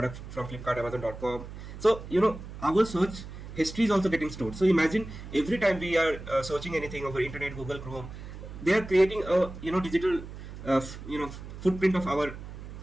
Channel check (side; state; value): right; noise; hum, 12 dB below the sound